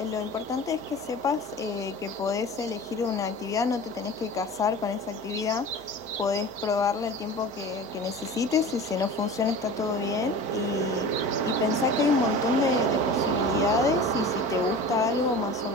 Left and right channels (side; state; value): left; noise; hum, 29 dB below the sound